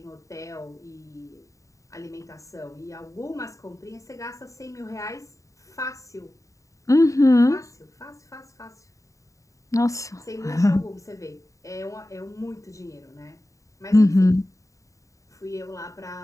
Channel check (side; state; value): right; late; 0.16 ms